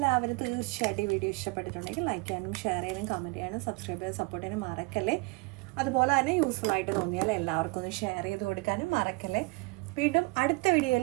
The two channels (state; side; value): quieter; left; 27.3 dB